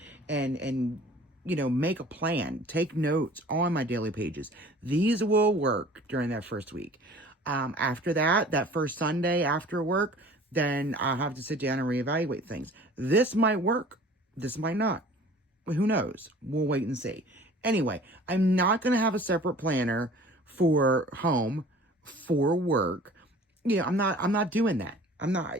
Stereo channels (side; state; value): both; normal; correlation 0.47